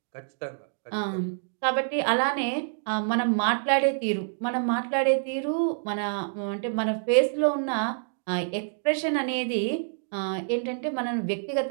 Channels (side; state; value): left; silent; digital silence